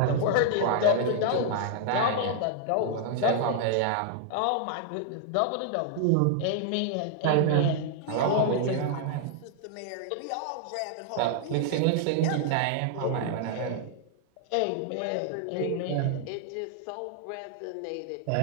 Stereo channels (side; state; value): both; different; correlation 0.00